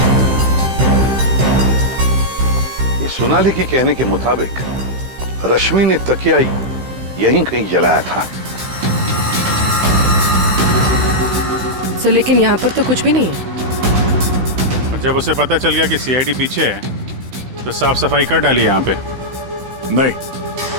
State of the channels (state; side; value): late; left; 16 ms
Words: ये सोनाली के कहने के मुताबिक रश्मि ने तकिया यहीं कहीं जलाया था। सर, लेकिन यहाँ पर तो कुछ भी नहीं है। और जब उसे पता चल गया कि सीआईडी पीछे है तो साफ सफाई कर डाली यहाँ पे। नहीं,